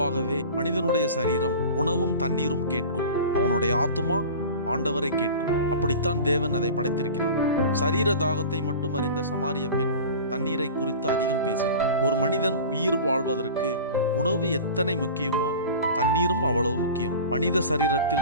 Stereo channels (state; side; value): inverted; both; correlation -0.35